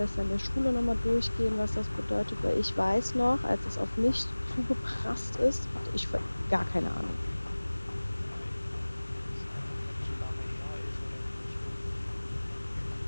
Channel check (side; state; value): both; inverted; correlation -1.00